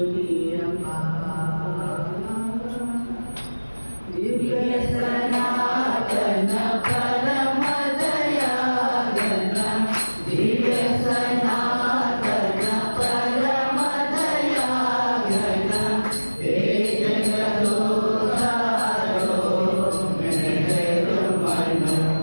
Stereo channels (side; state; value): both; inverted; correlation -1.00